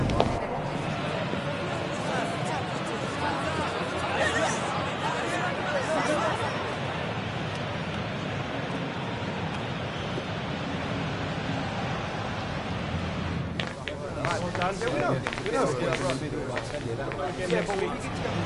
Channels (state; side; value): identical; both; correlation 1.00